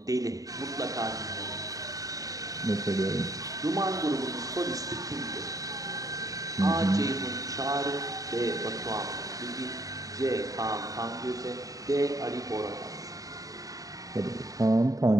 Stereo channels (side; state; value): left; late; 0.17 ms